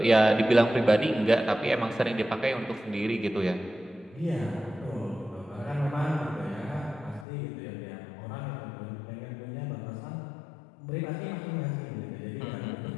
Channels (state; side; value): drops out; right; at 7.2 s